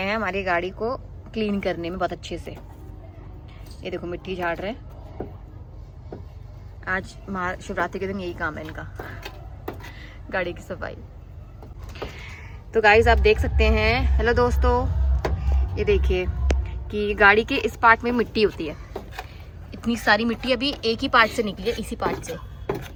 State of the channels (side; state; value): both; identical; correlation 1.00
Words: हमारी गाड़ी को क्लीन करने में बहुत अच्छे से। ये देखो मिट्टी झाड़ रहे हैं। आज शिवरात्रि के दिन यही काम है इनका, गाड़ी की सफाई। तो गाइस आप देख सकते हैं, हेलो दोस्तों, ये देखिए कि गाड़ी के इस पार्ट में मिट्टी होती है। इतनी सारी मिट्टी अभी एक ही पार्ट से निकली है, इसी पार्ट से,